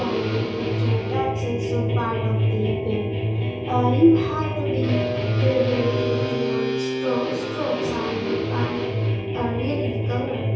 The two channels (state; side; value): identical; both; correlation 1.00